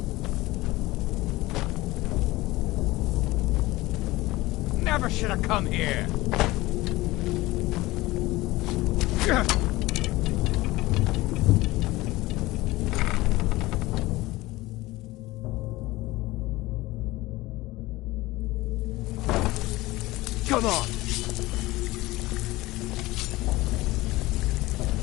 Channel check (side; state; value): right; quieter; 19.3 dB